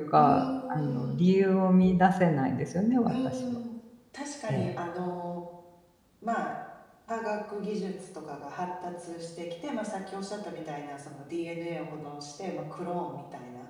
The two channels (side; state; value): both; identical; correlation 1.00